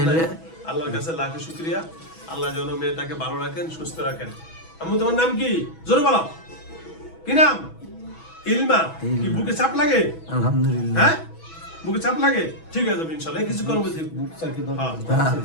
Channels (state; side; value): late; right; 6.1 ms